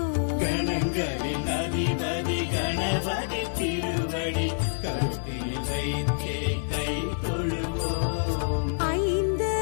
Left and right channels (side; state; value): right; silent; 60 dB below the other